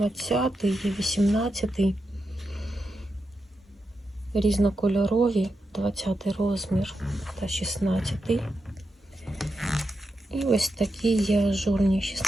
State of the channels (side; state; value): both; normal; correlation 0.87